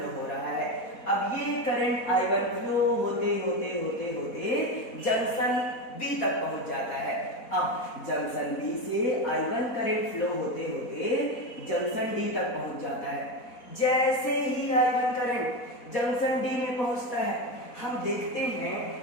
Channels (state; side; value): late; right; 4.1 ms